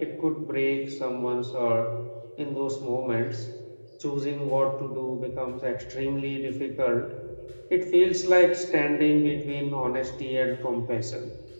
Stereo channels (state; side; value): inverted; both; correlation -1.00